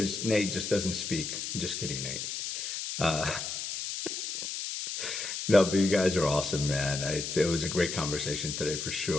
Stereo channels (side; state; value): left; noise; hiss, 5 dB below the sound